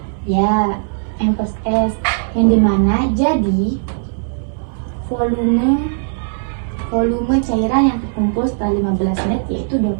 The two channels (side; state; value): left; silent; digital silence